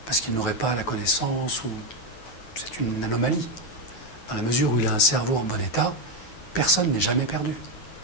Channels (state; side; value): late; right; 9.2 ms